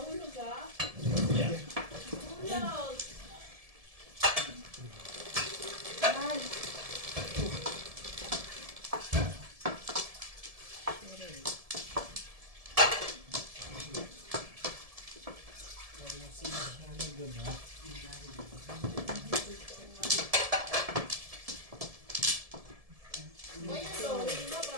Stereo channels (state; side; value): late; left; 1.7 ms